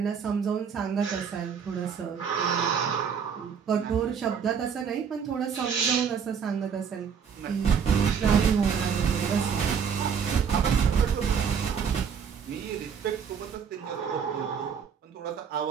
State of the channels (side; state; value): left; quieter; 6.9 dB